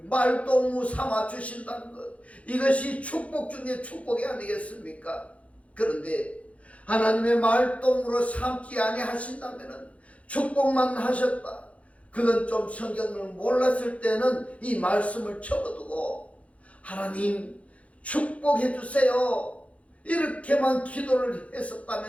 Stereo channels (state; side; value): late; right; 0.064 ms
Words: 말동무 삼아 주신다는 것, 이것이 축복 중에 축복이 아니겠습니까? 그런데 하나님의 말동무로 삼지 아니하신다면 축복만 하셨다. 그건 좀 성경을 몰랐을 때는 이 말씀을 적어두고, 하나님 축복해 주세요. 이렇게만 기도를